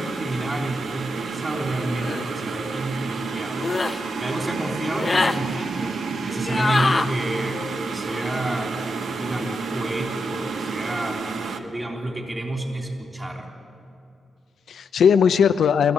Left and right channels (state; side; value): normal; both; correlation 0.83